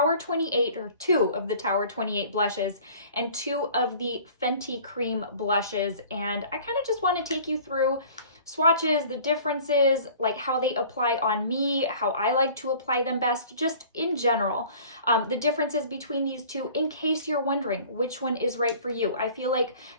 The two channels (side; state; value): both; inverted; correlation -0.48